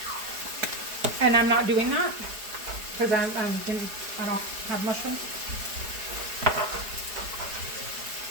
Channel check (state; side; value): late; left; 4.8 ms